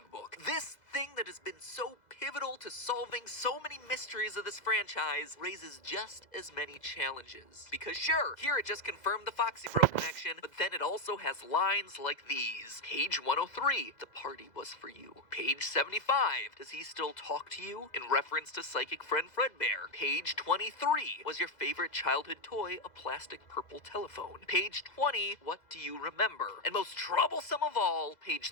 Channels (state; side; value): late; right; 2.0 ms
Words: this thing that has been so pivotal to solving so many mysteries of this franchise, raises just as many challenges. Because sure, here it just confirmed the Foxy Bro connection, but then it also has lines like these. Page 103, the party was for you. Page 75, does he still talk to you? In reference to psychic friend Fredbear. Page 23, was your favorite childhood toy a plastic purple telephone? Page 20, what do you remember? And most troublesome of all, page